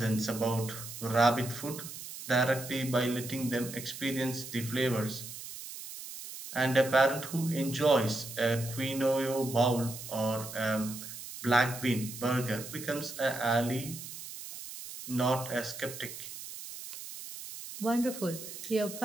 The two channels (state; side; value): noise; right; hiss, 11 dB below the sound